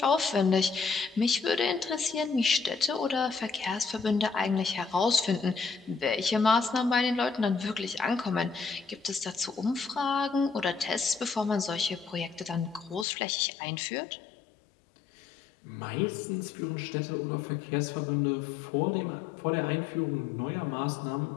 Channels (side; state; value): right; drops out; at 13.1 s